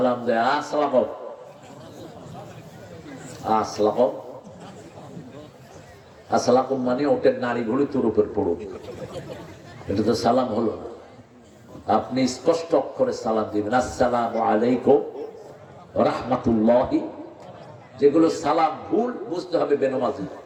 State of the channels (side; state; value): both; identical; correlation 1.00